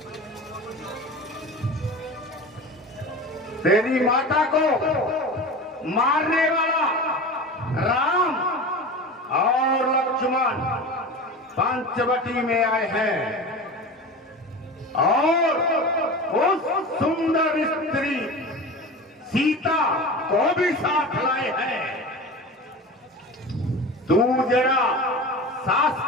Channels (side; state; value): both; normal; correlation 0.32